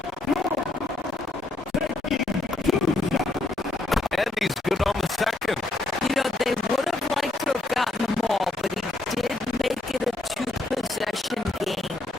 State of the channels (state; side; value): quieter; right; 3.0 dB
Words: And he's good on the second. You know, they would have liked to have gotten them all, but he did make it a 2-possession game.